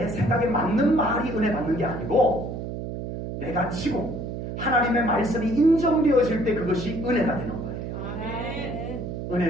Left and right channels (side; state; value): right; noise; hum, 6 dB below the sound